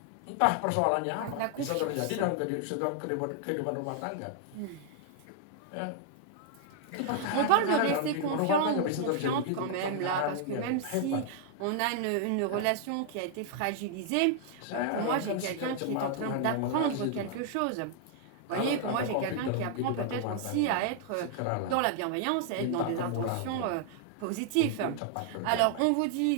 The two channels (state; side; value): different; both; correlation 0.00